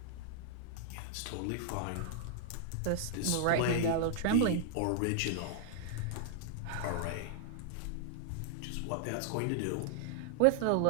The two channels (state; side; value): different; both; correlation -0.01